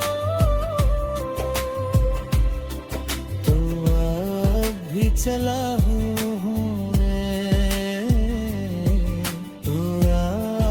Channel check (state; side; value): identical; both; correlation 1.00